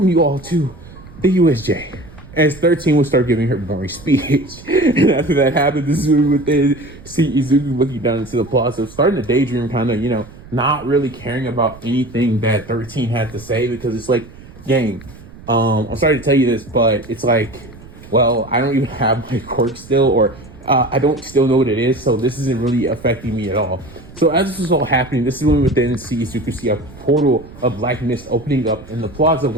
you all to the USJ. As 13 would start giving her boring speech. And after that happened, this is when we would then see Izuku looking down into the plaza, starting to daydream, kind of, not really caring about anything that 13 had to say, because it's like, gang, I'm sorry to tell you this, but it's like, well, I don't even have my quirk still, or I don't still know what it is, so this isn't really affecting me at all. So as this was all happening, this is when we would then see Izuku see a portal of black mist opening up in the plaza,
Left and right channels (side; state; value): right; noise; rumble, 19 dB below the sound